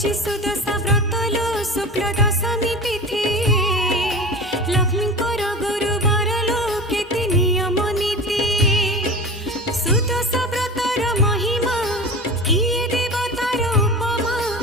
पड़ुछि सुदशा व्रत लो शुक्ल दशमी तिथि लक्ष्मी गुरुवार लो केते नियम नीति सुदशा व्रतर महिमा किए देवतार उपमा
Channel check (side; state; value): both; normal; correlation 0.32